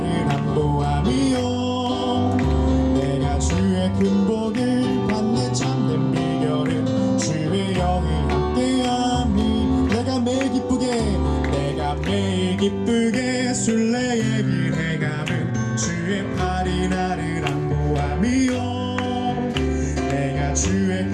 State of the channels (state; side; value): identical; both; correlation 1.00